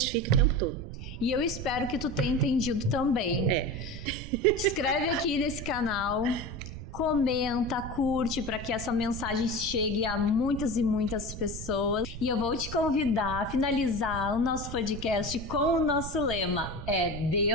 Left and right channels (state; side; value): noise; right; rumble, 9 dB below the sound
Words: o tempo todo. E eu espero que tu tenha entendido também. Te inscreve aqui nesse canal, comenta, curte, para que essa mensagem chegue a muitas e muitas pessoas. E eu vou te convidar a finalizar o nosso podcast com o nosso lema,